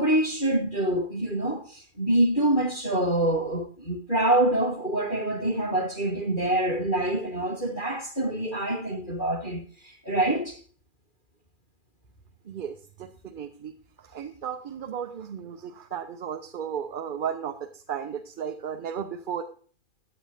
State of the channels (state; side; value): late; right; 2.4 ms